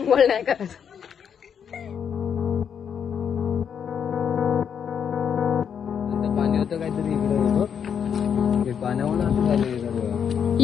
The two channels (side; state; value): right; quieter; 7.7 dB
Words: नाही करत. पाणी होतं काहीतरी इकडे, पाण्यावर